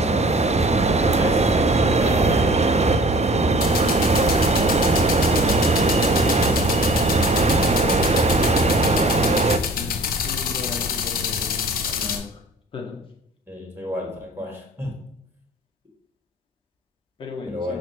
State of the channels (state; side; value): normal; both; correlation 0.48